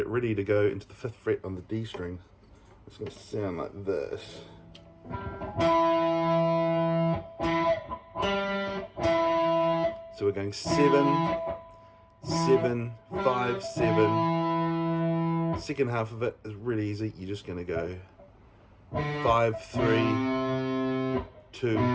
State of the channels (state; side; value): identical; both; correlation 1.00